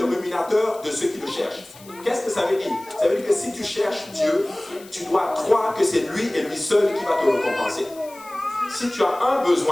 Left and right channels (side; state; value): left; noise; hiss, 21 dB below the sound